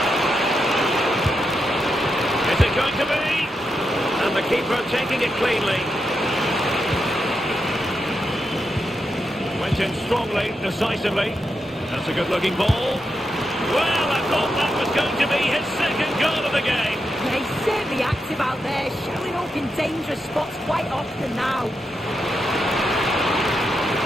Is it going to be? And the keeper taking it cleanly. In strongly, decisively. That's a good-looking ball. Well, I thought that was going to be his second goal of the game. Yeah, he's certainly active out there, showing up in dangerous spots quite often now.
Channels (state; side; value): normal; both; correlation 0.85